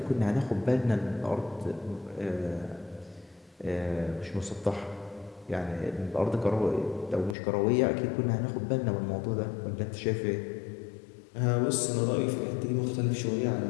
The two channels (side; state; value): right; drops out; at 7.4 s